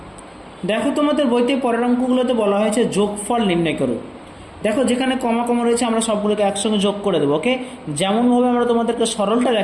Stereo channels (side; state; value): both; identical; correlation 1.00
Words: দেখো তোমাদের বইতে পরের অঙ্কগুলোতে বলা হয়েছে যোগফল নির্ণয় করো। দেখো যেখানে কমা কমা রয়েছে আমরা সবগুলোকে একসঙ্গে যোগ করে দেবো। ওকে, যেমনভাবে আমরা তোমাদেরকে সরলটা